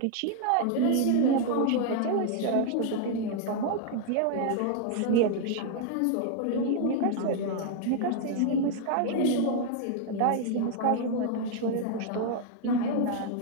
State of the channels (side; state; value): both; different; correlation 0.00